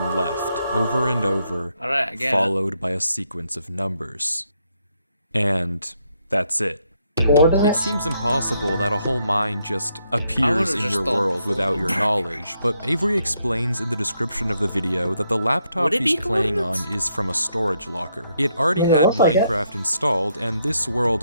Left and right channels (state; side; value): inverted; both; correlation -0.76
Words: left. Over and over, followed by a sequence of numbers. And that's it. It seems impossible that a whole mine just appears in your world without your knowledge, but Avery explains in the description of the video that the laptop he's playing on is from a storage locker. It already had Minecraft installed, and this world